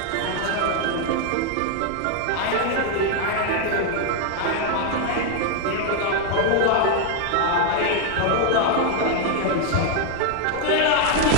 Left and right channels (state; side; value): different; both; correlation 0.00